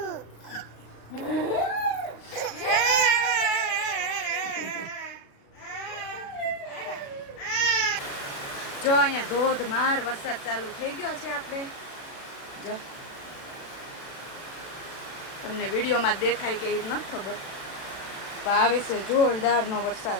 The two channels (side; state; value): right; late; 36 ms